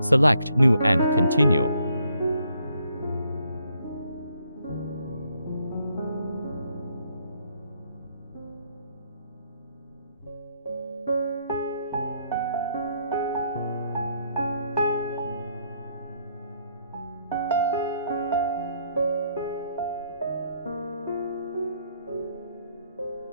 New and continue.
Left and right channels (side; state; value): both; inverted; correlation -0.71